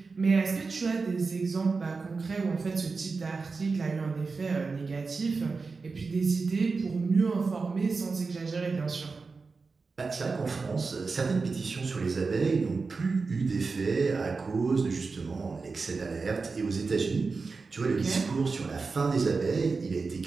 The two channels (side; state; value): left; quieter; 4.4 dB